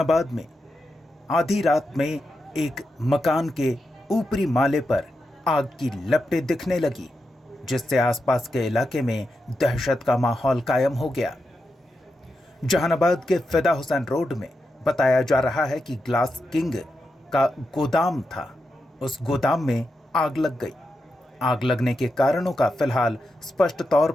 में आधी रात में एक मकान के ऊपरी माले पर आग की लपटें दिखने लगी, जिससे आसपास के इलाके में दहशत का माहौल कायम हो गया। जहानाबाद के फिदा हुसैन रोड में बताया जा रहा है कि ग्लास किंग का गोदाम था। उस गोदाम में आग लग गई। आग लगने के कारणों का फिलहाल स्पष्ट तौर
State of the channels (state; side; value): normal; both; correlation 0.87